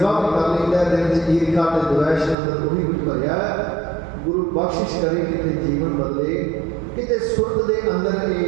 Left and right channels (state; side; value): drops out; left; at 2.4 s